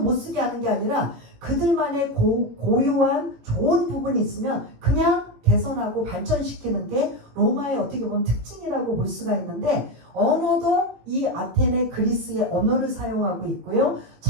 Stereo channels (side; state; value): left; late; 18 ms